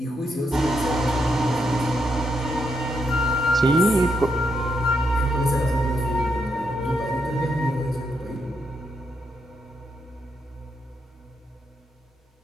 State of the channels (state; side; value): normal; both; correlation 0.80